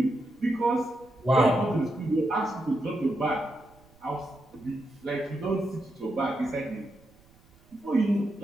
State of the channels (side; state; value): right; noise; rumble, 29 dB below the sound